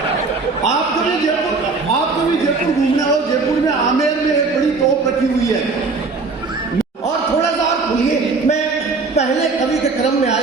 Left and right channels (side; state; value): left; quieter; 4.1 dB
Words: आपको भी जयपुर घूमना हो, जयपुर में आमेर में एक बड़ी तोप रखी हुई है। और थोड़ा सा और खुलिए, मैं पहले कवि के क्रम में